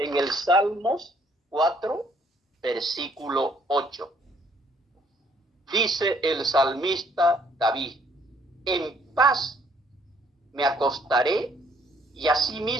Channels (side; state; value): both; normal; correlation 0.64